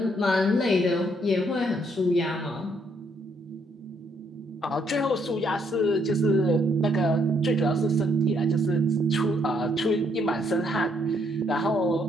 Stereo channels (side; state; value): both; normal; correlation 0.71